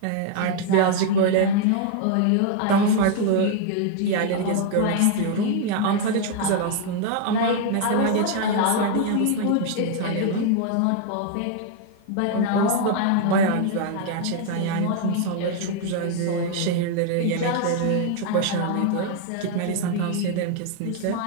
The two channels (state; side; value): different; both; correlation 0.00